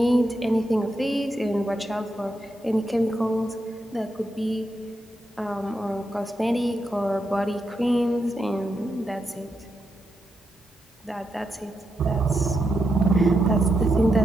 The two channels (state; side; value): normal; both; correlation 0.83